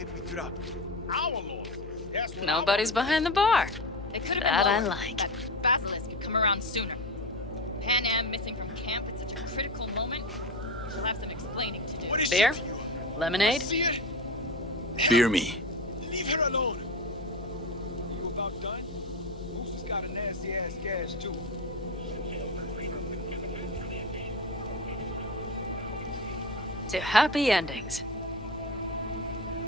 we drop? Our Lord. That's what Nobody's behind the bar. They could have That been I lower. like. That basilisk could come around sooner. Panam missing from camp at such a critical moment. We'll have some explaining to do. What is Beer? she to you? Lemonade? See it? Beer me. Leave her alone. You about done? Moose has got a nasty ass gash too. To happy endings.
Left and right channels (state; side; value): noise; left; hum, 13 dB below the sound